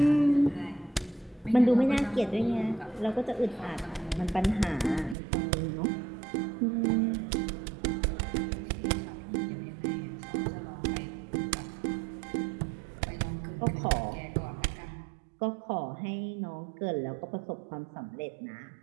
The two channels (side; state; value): left; drops out; at 5.2 s